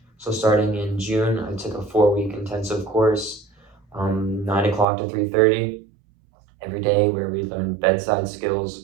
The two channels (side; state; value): left; drops out; at 4.9 s